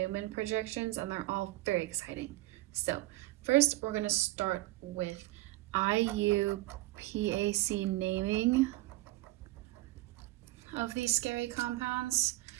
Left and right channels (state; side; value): quieter; left; 18.6 dB